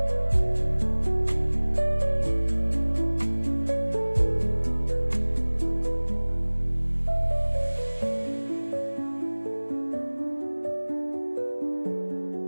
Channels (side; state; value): both; inverted; correlation -1.00